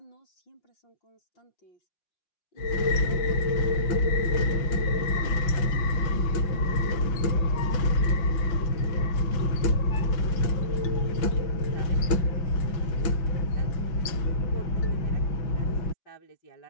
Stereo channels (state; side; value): late; right; 6.0 ms